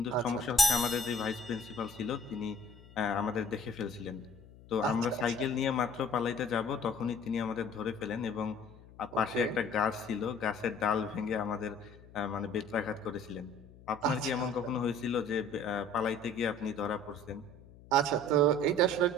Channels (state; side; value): noise; left; hum, 21 dB below the sound